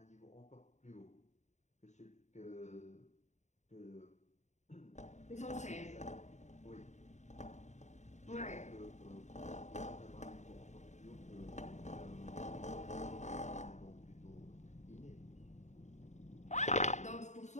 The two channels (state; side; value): late; right; 0.34 ms